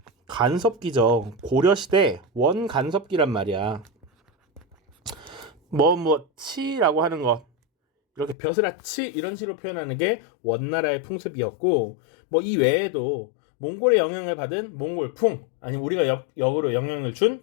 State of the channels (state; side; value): drops out; right; at 8.3 s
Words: 간섭기죠. 고려시대 원 간섭기란 말이야. 치라고 하는 것 이렇게 벼슬아치 이런 식으로 표현하는 게 원나라의 풍습이었고 이 외에도 몽골의 영향을 받은 몽골풍 아니면 우리가 역으로 영향을